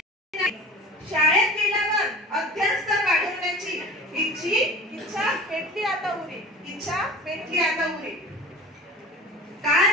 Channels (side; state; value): both; normal; correlation 0.39